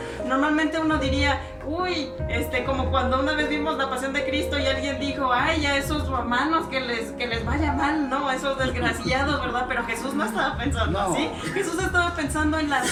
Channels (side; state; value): both; identical; correlation 1.00